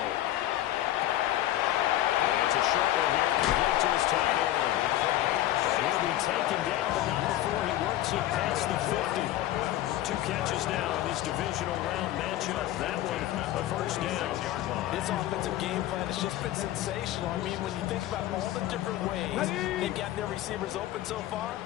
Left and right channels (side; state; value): right; quieter; 14.0 dB